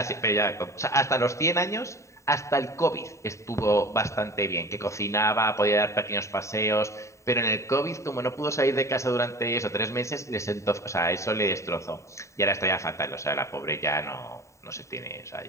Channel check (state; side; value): late; right; 0.14 ms